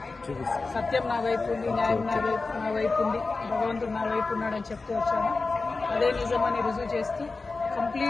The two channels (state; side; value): quieter; right; 3.8 dB